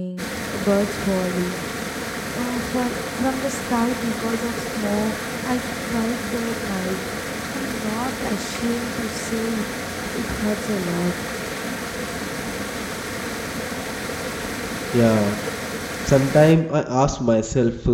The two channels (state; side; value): identical; both; correlation 1.00